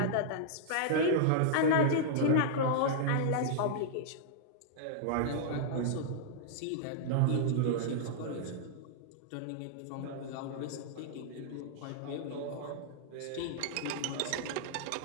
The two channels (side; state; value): both; different; correlation -0.02